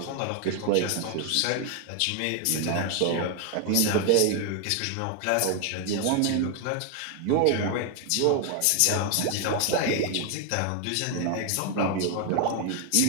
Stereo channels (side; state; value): both; different; correlation 0.01